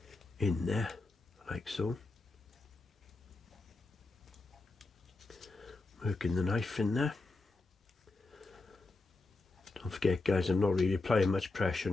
in there, like so. Working the knife in there. Don't forget, guys, I'm not really applying much pressure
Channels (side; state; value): right; quieter; 3.3 dB